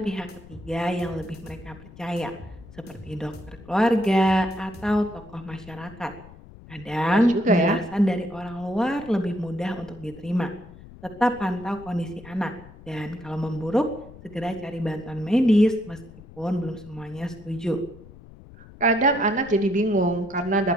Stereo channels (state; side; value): noise; left; rumble, 19 dB below the sound